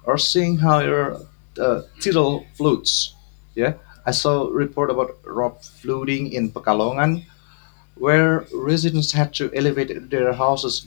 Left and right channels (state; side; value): silent; right; digital silence